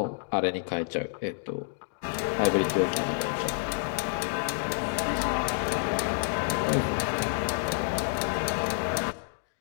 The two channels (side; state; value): right; silent; digital silence